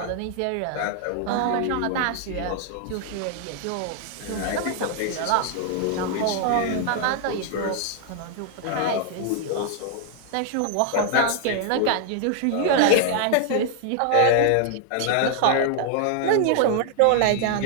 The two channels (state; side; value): different; both; correlation 0.00